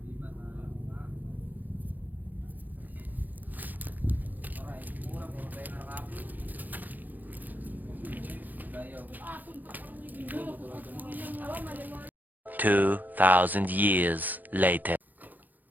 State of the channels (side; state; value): left; late; 0.084 ms